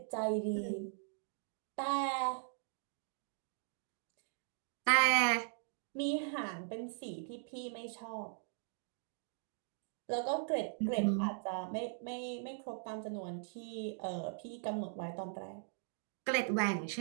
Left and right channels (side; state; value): left; silent; digital silence